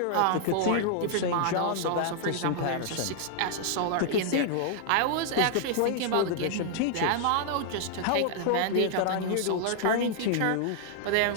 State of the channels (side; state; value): both; different; correlation 0.00